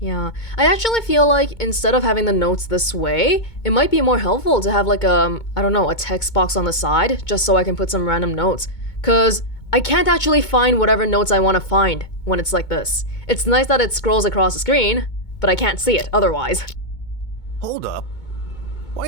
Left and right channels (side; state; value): right; late; 2.2 ms